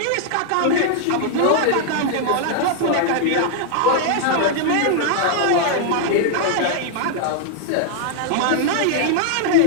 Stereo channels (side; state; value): both; different; correlation 0.00